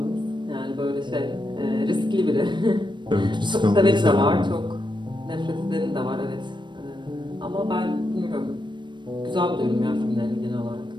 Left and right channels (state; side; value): late; left; 0.22 ms